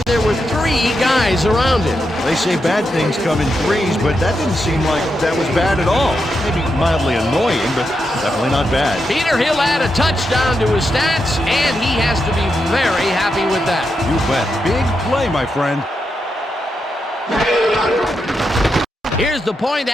there were 3 guys around him. They say bad things come in threes, but that didn't seem like that was bad at all. Maybe mildly annoying, but definitely not bad. Peter, he'll add a touchdown to his stats, and he has to be very happy with that. You bet. Big play, my friend. Here's the point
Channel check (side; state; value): both; normal; correlation 0.85